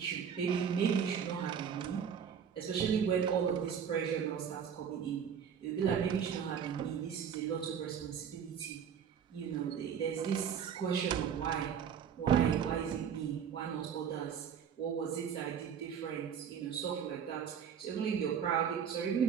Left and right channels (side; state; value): left; quieter; 7.8 dB